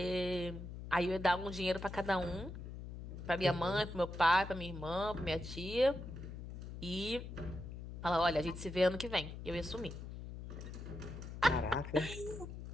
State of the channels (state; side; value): noise; left; hum, 10 dB below the sound